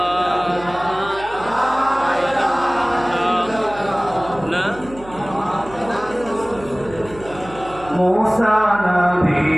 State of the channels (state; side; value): noise; right; hum, 18 dB below the sound